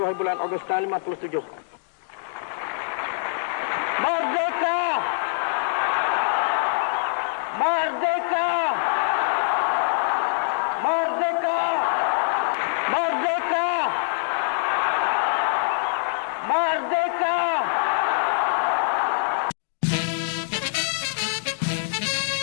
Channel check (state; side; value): silent; right; digital silence